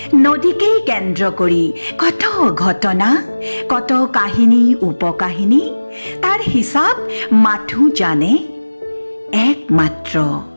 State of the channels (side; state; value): both; inverted; correlation -1.00